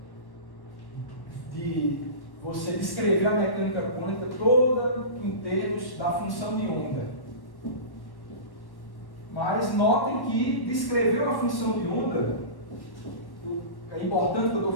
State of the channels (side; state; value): right; late; 1.1 ms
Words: você descrever a mecânica quântica toda em termos da função de onda. Mas notem que descrever uma função de onda, é importante que eu estou